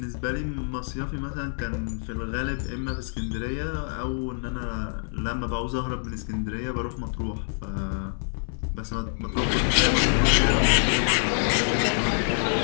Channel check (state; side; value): silent; right; 61 dB below the other